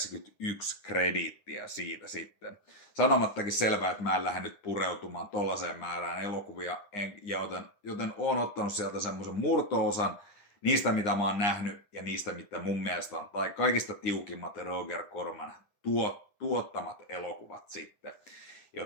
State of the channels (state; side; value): late; right; 9.7 ms